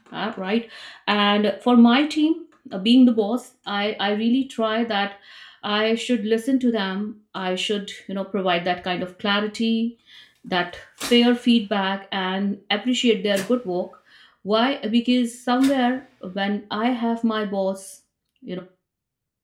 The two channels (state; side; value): identical; both; correlation 1.00